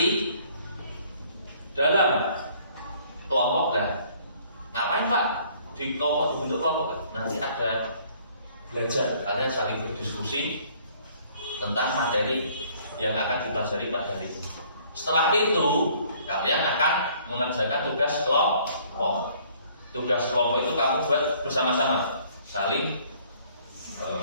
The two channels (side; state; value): both; inverted; correlation -0.59